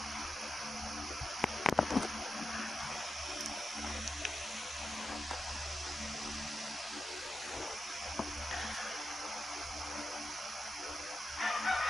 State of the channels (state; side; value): normal; both; correlation 0.89